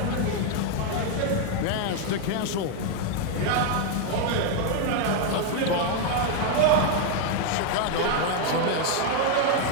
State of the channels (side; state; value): both; different; correlation 0.01